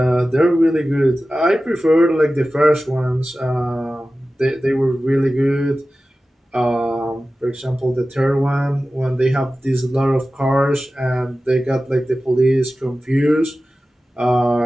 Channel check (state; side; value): normal; both; correlation 0.95